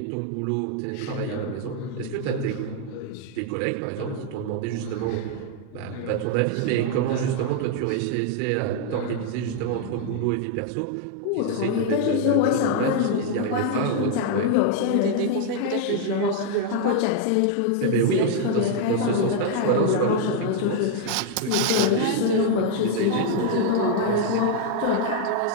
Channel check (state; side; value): different; both; correlation 0.00